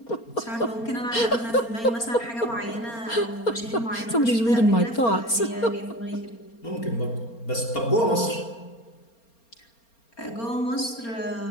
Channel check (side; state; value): right; late; 4.3 ms